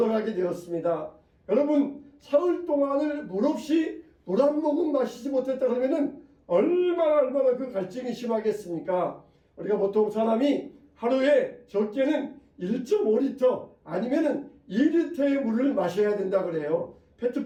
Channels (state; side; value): identical; both; correlation 1.00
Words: 되었습니다. 여러분, 사흘 동안을 물 없이 물 한 모금 마시지 못했다 그러면은 얼마나 그 갈증이 심하겠습니까? 우리가 보통 사람이 하루에 적게는 1.5리터 아니면은 2리터의 물을 마셔야 된다 그래요.